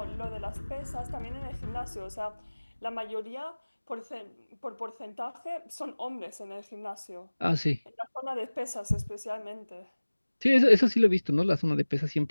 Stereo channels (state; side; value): inverted; both; correlation -1.00